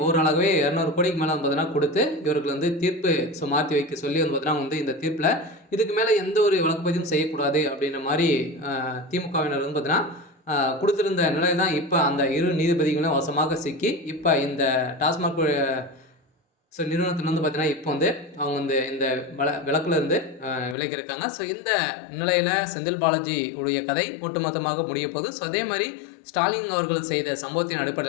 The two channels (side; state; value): right; drops out; at 20.8 s